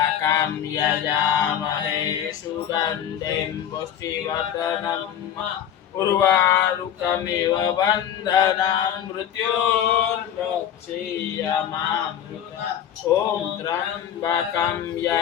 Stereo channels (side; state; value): right; quieter; 9.7 dB